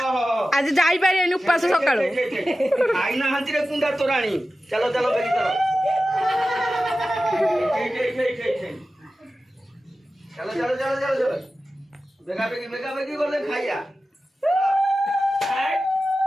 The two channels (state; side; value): normal; both; correlation 0.94